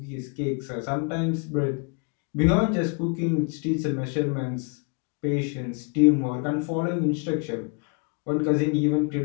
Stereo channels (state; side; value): quieter; right; 37.1 dB